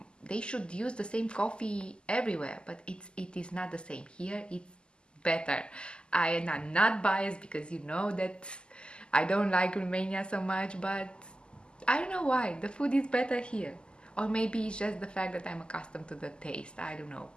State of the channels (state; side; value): late; right; 0.049 ms